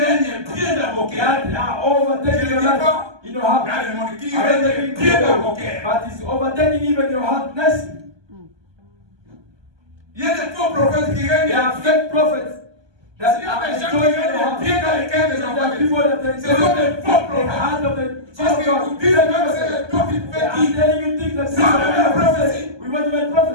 règnent bien d'avocats. That are overtaking your life. You know how? Dans le monde qui règnent bien d'avocats. But it's overtaking even your heart nicely. Il y a des faux prophètes qui règnent. There are fake prophets. Il y a des gens qui règnent bien dans les cœurs des enfants. Ce sont des faux prophètes. Parce qu'ils vous disent même que c'est le temps qui fait I'm telling you things that c'est la prophétie. we want to make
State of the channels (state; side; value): late; left; 1.2 ms